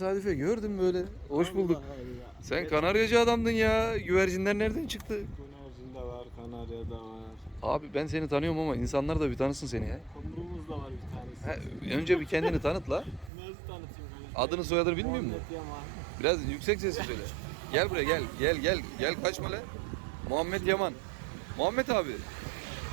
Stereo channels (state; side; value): drops out; left; at 13.3 s